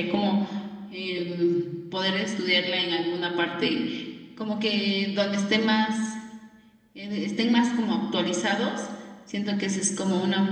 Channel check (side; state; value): both; identical; correlation 1.00